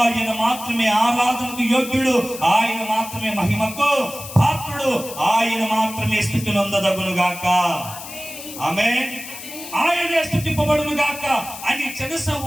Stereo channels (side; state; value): left; noise; hiss, 12 dB below the sound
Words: మాత్రమే ఆరాధనకు యోగ్యుడు, ఆయన మాత్రమే మహిమకు పాత్రుడు, ఆయన మాత్రమే స్తుతి నొందదగును గాక, ఆమేన్. ఆయనే స్తుతింపబడును గాక అని